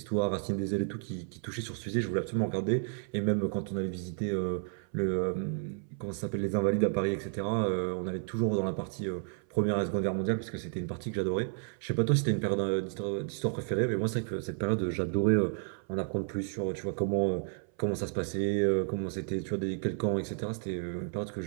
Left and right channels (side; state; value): left; silent; 57 dB below the other